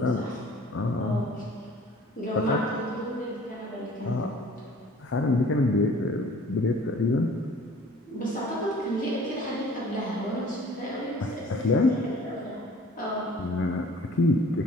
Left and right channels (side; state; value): both; normal; correlation 0.50